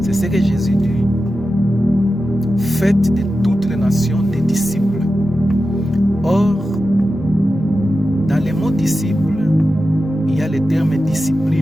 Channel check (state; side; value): normal; both; correlation 0.92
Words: c'est ce que Jésus dit. Faites de toutes les nations des disciples. Or, dans les mots disciples, il y a le terme